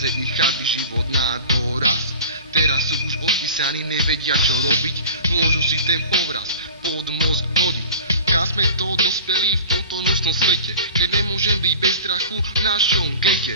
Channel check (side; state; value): both; inverted; correlation -0.39